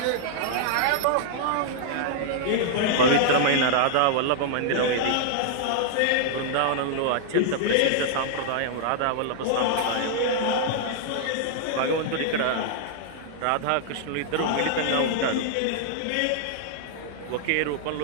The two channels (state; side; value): different; both; correlation -0.01